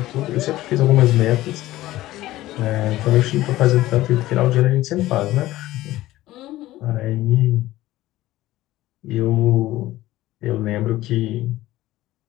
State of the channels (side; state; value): right; quieter; 16.2 dB